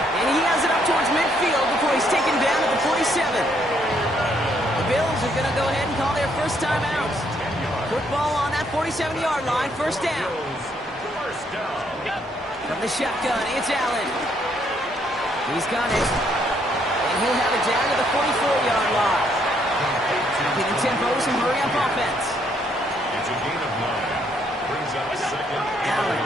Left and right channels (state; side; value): normal; both; correlation 0.70